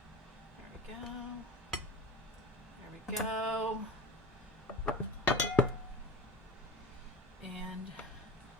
There we go. And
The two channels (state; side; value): normal; both; correlation 0.34